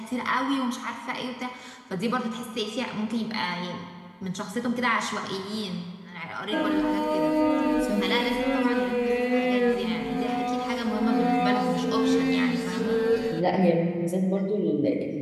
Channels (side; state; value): both; identical; correlation 1.00